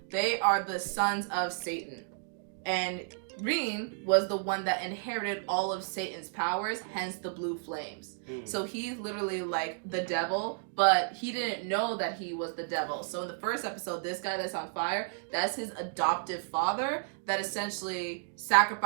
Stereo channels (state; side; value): silent; left; digital silence